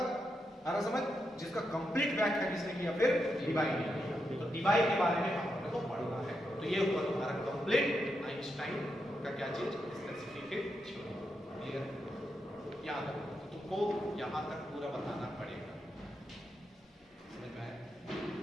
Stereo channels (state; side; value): normal; both; correlation 0.84